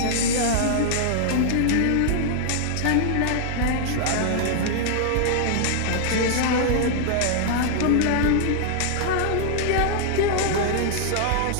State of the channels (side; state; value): both; different; correlation 0.00